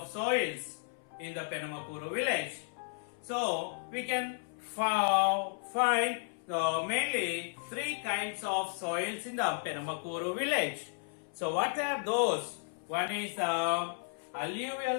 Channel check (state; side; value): silent; right; 55 dB below the other